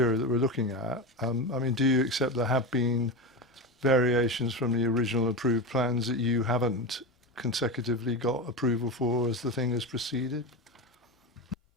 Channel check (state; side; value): normal; both; correlation 0.20